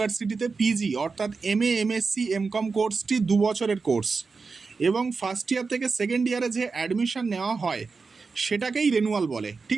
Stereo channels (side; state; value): left; quieter; 4.6 dB